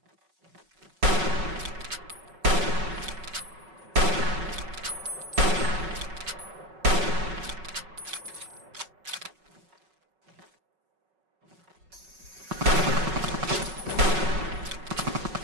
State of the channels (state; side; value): late; left; 5.4 ms